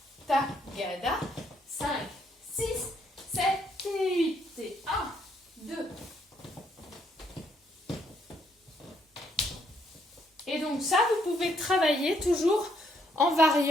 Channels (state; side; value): normal; both; correlation 0.72